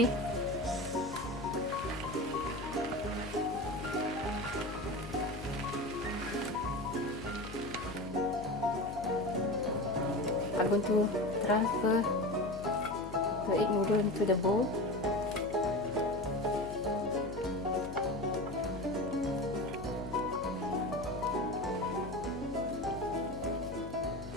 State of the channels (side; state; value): left; noise; hum, 12 dB below the sound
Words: I'm going to transfer the egg noodle into the bowl.